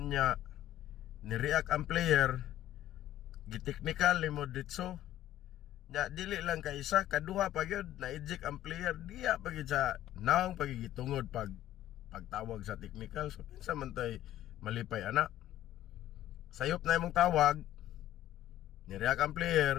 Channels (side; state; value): right; quieter; 13.2 dB